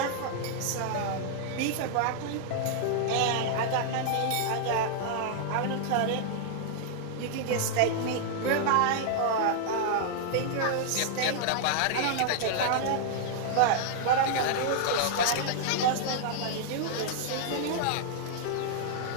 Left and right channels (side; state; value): both; different; correlation -0.01